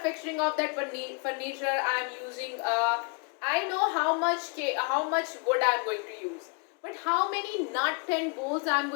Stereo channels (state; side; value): quieter; right; 35.3 dB